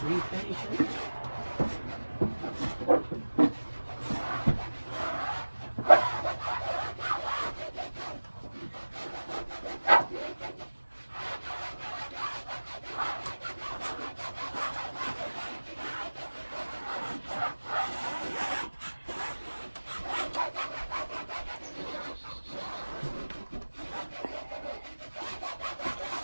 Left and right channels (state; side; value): inverted; both; correlation -1.00